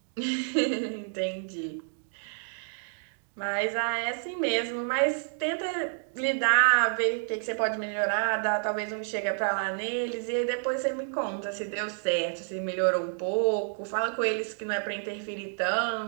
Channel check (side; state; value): left; silent; digital silence